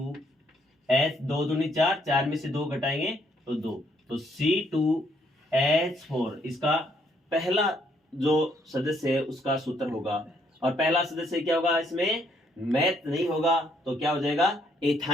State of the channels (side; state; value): both; normal; correlation 0.70